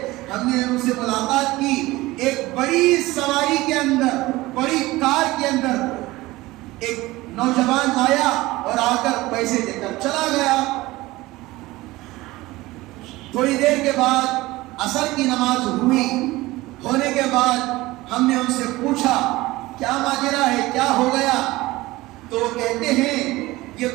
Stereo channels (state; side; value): quieter; left; 19.2 dB